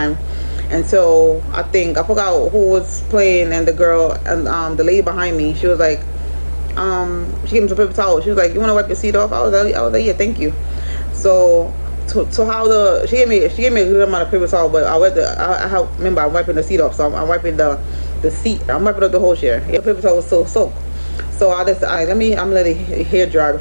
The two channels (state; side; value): inverted; both; correlation -1.00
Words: until I forgot who was playing, and the girl and the lady behind me, she was like, she gave me some paper towel. She was like, "You want to wipe your seat off?" I was like, "Yeah, thank you." So she gave me a good amount of paper towel, but remember I'm wiping the seat off, so I'm wiping the seat. I'm wiping up the whole chair. Yeah, the paper towel was so soaked. So I'm gonna let it hair dry